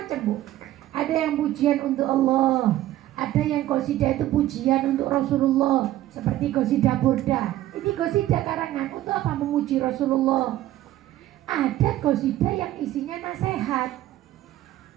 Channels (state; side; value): quieter; left; 14.3 dB